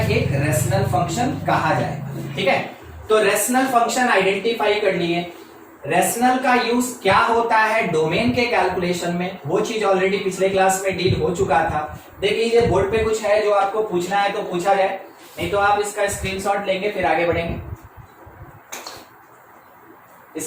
रेशनल फंक्शन कहा जाएगा। ठीक है, तो रेशनल फंक्शन आइडेंटिफाई कर लिए। रेशनल का यूज क्या होता है डोमेन के कैलकुलेशन में, वो चीज ऑलरेडी पिछले क्लास में डील हो चुका था। देख लीजिए बोर्ड पे कुछ है जो आपको पूछना है तो पूछा जाए, नहीं तो आप इसका स्क्रीनशॉट लेंगे फिर आगे बढ़ेंगे।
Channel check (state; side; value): identical; both; correlation 1.00